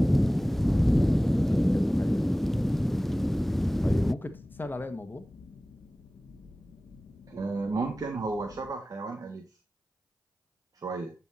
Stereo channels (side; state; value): both; normal; correlation 0.97